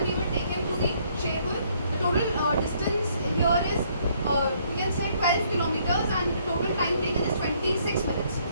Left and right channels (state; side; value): inverted; both; correlation -0.67